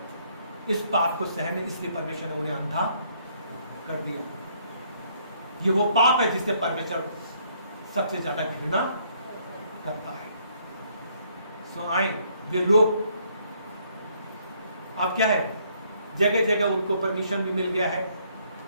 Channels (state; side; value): inverted; both; correlation -0.68